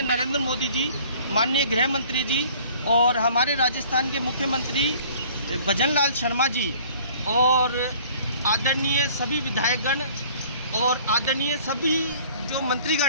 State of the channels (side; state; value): both; inverted; correlation -0.52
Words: नरेंद्र मोदी जी, माननीय गृह मंत्री जी और हमारे राजस्थान के मुख्यमंत्री भजनलाल शर्मा जी और आदरणीय सभी विधायकगण और आदरणीय सभी जो